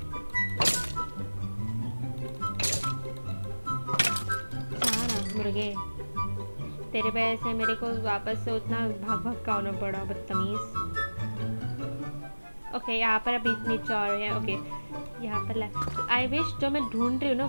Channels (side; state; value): both; inverted; correlation -1.00